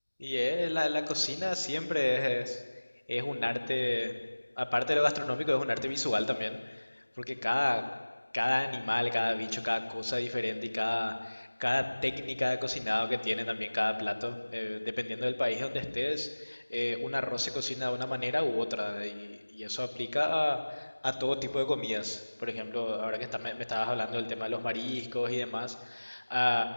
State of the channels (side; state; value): both; inverted; correlation -1.00